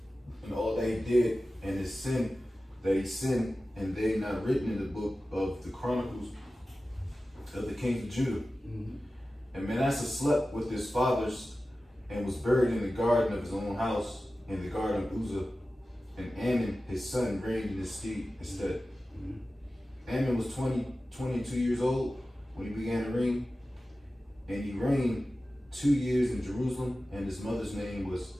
and all that he did, and his sin that he sinned, and they not written in the book of the Chronicles of the kings of Judah. Mm-hmm. And Manasseh slept with his fathers, and was buried in the garden of his own house, in the garden of Uzzah. And Ammon, his son, reigned in his stead. Mm-hmm. Ammon was 22 years old when he began to reign, and he reigned 2 years in Jerusalem, and his mother's name was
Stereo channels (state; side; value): normal; both; correlation 0.95